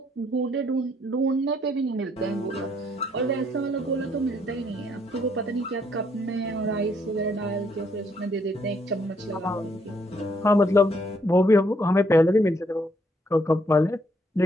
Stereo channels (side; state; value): both; normal; correlation 0.70